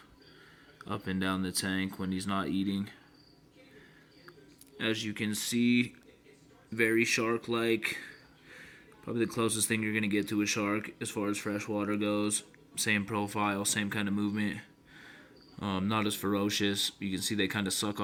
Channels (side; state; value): both; identical; correlation 1.00